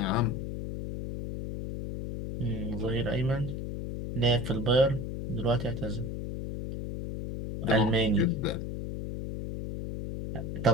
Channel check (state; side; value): noise; left; hum, 5 dB below the sound